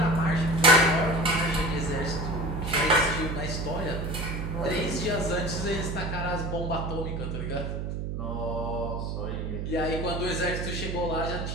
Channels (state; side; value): noise; right; hum, 3 dB below the sound